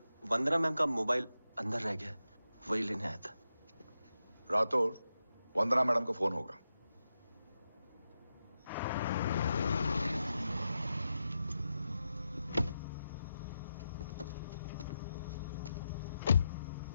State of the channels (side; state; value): both; inverted; correlation -0.88